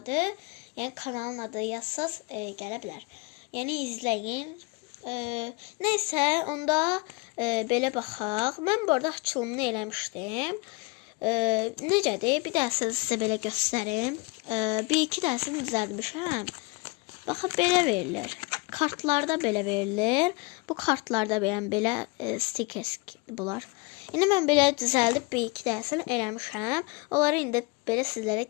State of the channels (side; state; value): right; quieter; 26.5 dB